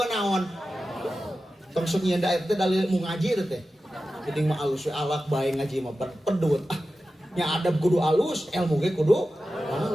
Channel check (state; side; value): normal; both; correlation 0.93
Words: naon. Tong sok nyieun da teh dalil ilmu ngaji teh. Penting mah alus we alak bae ngaji mah pedut. Nya adab kudu alus, ilmu ge kudu